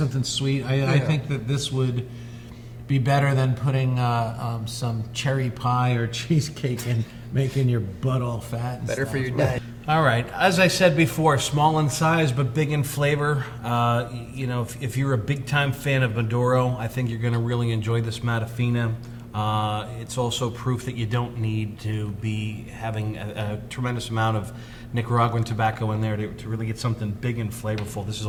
sweet. I think that this would be better than putting some cherry pie or cheesecake and making your butt all fat. And Better stuff. for your day. All right. As I said before, small in size but big in flavor. If you're a big-time fan of Maduro, I think you're going to really enjoy this Matafina. It's also proof that you don't need to be having a tremendous amount of Nicaraguan tobacco in there to really get something big and flavorful. This is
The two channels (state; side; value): identical; both; correlation 1.00